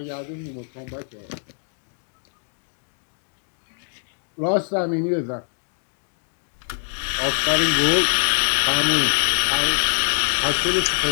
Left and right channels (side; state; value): right; silent; 61 dB below the other